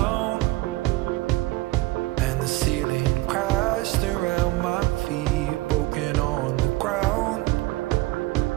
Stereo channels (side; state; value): left; quieter; 19.1 dB